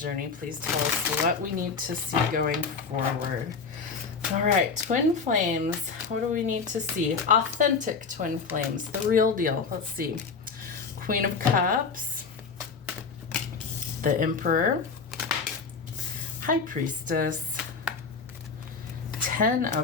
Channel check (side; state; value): right; quieter; 5.0 dB